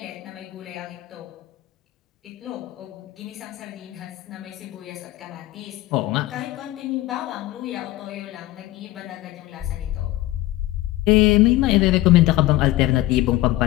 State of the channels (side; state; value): right; quieter; 16.7 dB